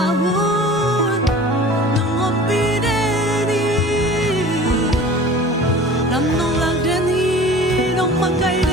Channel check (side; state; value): both; normal; correlation 0.42